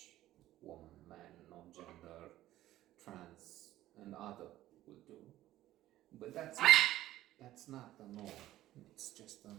woman, man, non-gender, trans, and other will do. But that's not the norm. It's just a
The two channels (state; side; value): quieter; left; 14.5 dB